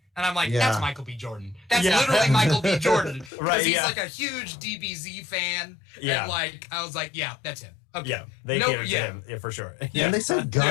And I'm like, that's Michael B. Jordan. That's literally Michael B. Jordan. Because he's like a huge DBZ fan. Yeah. And like, I was like, yeah, that's him. Okay. Yeah, they catered to him, for sure. Yeah. And they said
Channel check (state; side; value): drops out; right; at 3.3 s